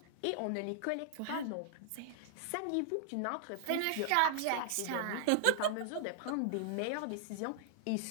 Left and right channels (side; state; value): both; different; correlation -0.01